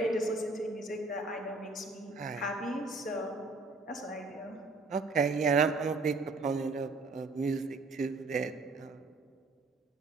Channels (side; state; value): left; quieter; 3.4 dB